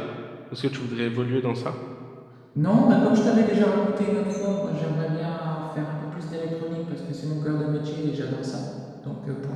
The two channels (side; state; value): both; identical; correlation 1.00